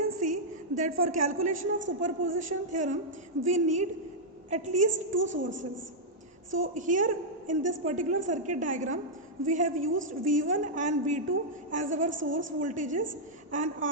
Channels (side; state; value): both; normal; correlation -0.07